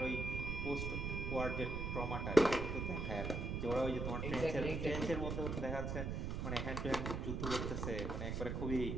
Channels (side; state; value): right; noise; rumble, 2 dB below the sound